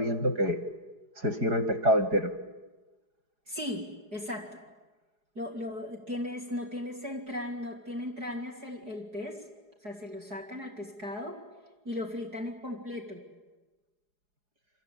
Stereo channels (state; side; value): late; left; 4.8 ms